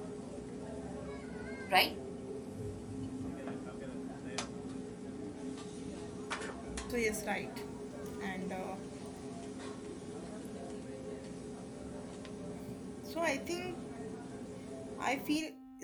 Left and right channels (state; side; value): identical; both; correlation 1.00